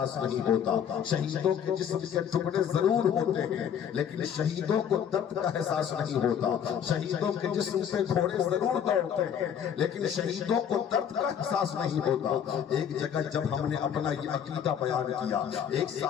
نہیں ہوتا۔ شہیدوں کے جسم کے ٹکڑے ضرور ہوتے ہیں لیکن شہیدوں کو درد کا احساس نہیں ہوتا۔ شہیدوں کے جسم سے گھوڑے ضرور دوڑتے ہیں لیکن شہیدوں کو درد کا احساس نہیں ہوتا۔ ایک جگہ جب ہم نے اپنا یہ عقیدہ بیان کیا، ایک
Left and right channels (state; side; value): quieter; right; 8.5 dB